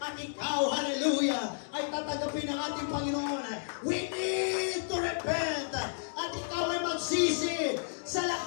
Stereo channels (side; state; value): right; silent; digital silence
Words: ikaw, hallelujah, ay tatanggapin ng ating Panginoon. We need to repent. At ikaw ay magsisi sa